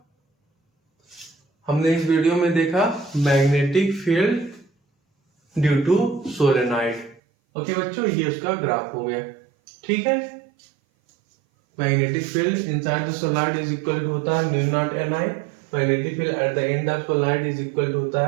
हमने इस वीडियो में देखा magnetic field due to solenoid. Okay बच्चों, ये उसका ग्राफ हो गया। ठीक है, magnetic field inside the solenoid is equal to होता है mu naught N I. Magnetic field at the end of solenoid is equal to होता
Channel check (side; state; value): left; drops out; at 7.2 s